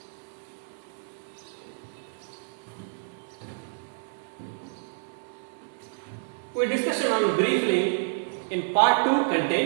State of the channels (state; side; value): silent; left; 59 dB below the other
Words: We discussed on briefly in part 2